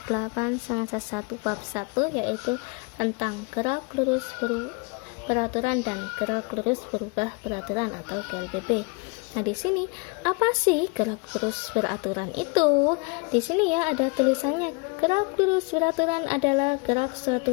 8 semester 1 bab 1, yaitu tentang gerak lurus beraturan dan gerak lurus berubah beraturan atau GLBB. Nah, di sini apa sih gerak lurus beraturan itu? Di sini ya ada tulisannya. Gerak lurus beraturan adalah gerak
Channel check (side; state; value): right; quieter; 31.1 dB